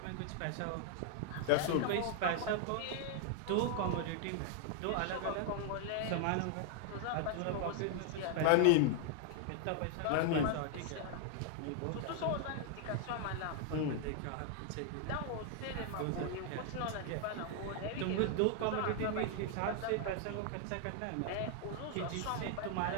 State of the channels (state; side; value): different; both; correlation 0.00